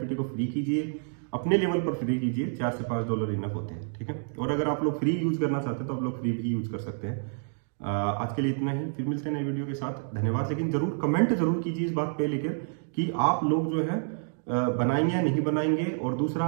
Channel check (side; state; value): left; silent; digital silence